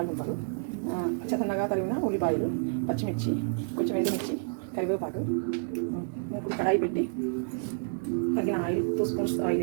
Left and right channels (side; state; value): left; silent; digital silence